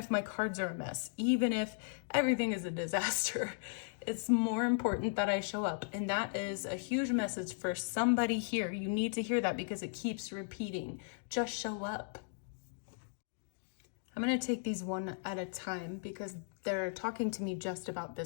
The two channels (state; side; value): silent; right; digital silence